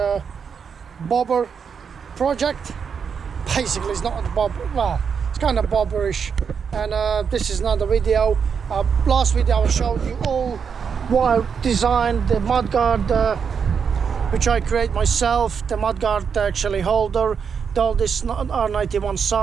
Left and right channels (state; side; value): quieter; left; 6.5 dB